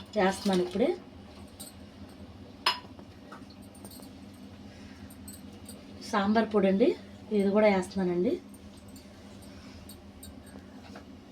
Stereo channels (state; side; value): identical; both; correlation 1.00